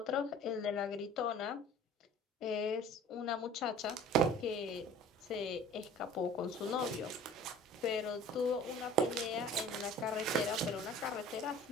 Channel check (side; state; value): both; normal; correlation 0.46